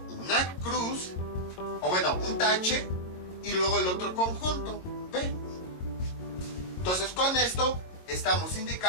una cruz, un tache y luego el otro conjunto, B. Entonces con esto estamos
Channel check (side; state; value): right; late; 22 ms